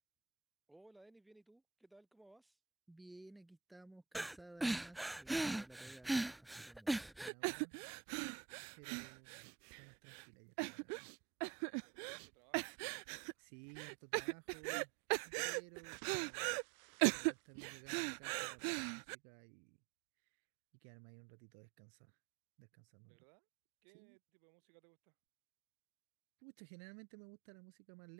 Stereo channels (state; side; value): drops out; left; at 7.3 s